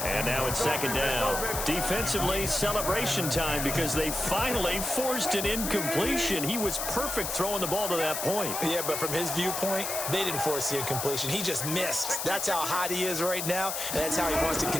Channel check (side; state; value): left; noise; hiss, 3 dB below the sound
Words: And now it's second down. Defensively, celebration time because they finally forced an incompletion. He was perfect throwing the ball to that point. Yeah, but from his viewpoint, they didn't force the incompletion. He just missed. That's how hot he is right now, and that's how he wants to